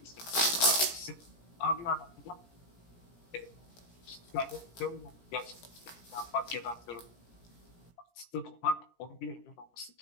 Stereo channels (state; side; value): late; right; 17 ms